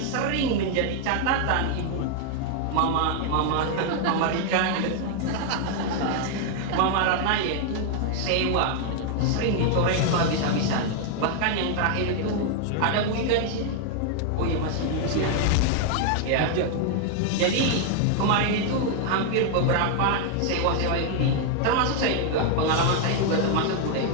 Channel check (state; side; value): different; both; correlation 0.00